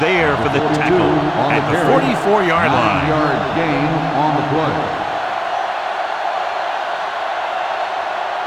for the tackle at the 44-yard line. 9-yard gain on the play.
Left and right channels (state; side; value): identical; both; correlation 1.00